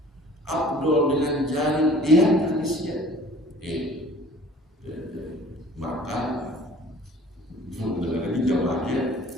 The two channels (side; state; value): both; normal; correlation 0.50